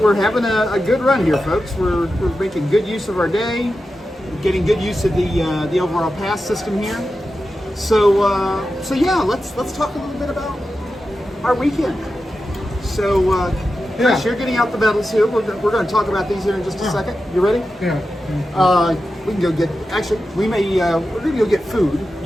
having a good run here, folks. We're making good use of our day, getting good use of the overall pass system here. So yeah, let's talk a little bit about our weekend. So Chris, you're getting out the medals here. We're going to talk about these here in just a second. You ready? Yeah. We can go get. Actually, we're going to go get food.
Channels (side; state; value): both; normal; correlation 0.91